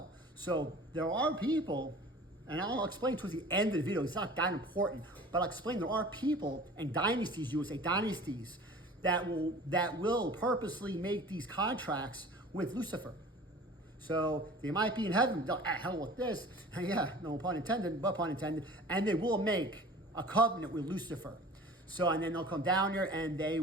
So there are people, and I'll explain towards the end of the video, it's not that important, but I'll explain there are people and dynasties, you would say dynasties, that will purposely make these contracts with Lucifer. So they might be in heaven, hell with this, yeah, no pun intended, but pun intended, and they will make a covenant with Lucifer. So, and then they'll come down here and they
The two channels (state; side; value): normal; both; correlation 0.43